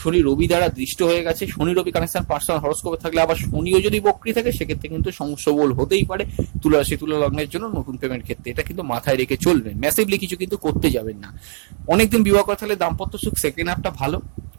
শনি রবি দ্বারা দৃষ্ট হয়ে গেছে। শনি রবি কানেকশন পার্সোনাল হরোস্কোপে থাকলে, আবার শনিও যদি বক্রী থাকে সেক্ষেত্রে কিন্তু সমস্যা বল হতেই পারে তুলা রাশি, তুলা লগ্নের জন্য নতুন প্রেমের ক্ষেত্রে। এটা কিন্তু মাথায় রেখে চলবেন, ম্যাসিভলি কিছু কিন্তু করতে যাবেন না। অনেকদিন বিবাহ করে থাকলে দাম্পত্য সুখ সেকেন্ড হাফটা ভালো।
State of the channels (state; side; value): silent; left; digital silence